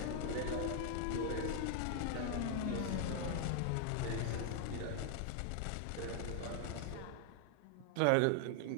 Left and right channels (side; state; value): both; different; correlation 0.00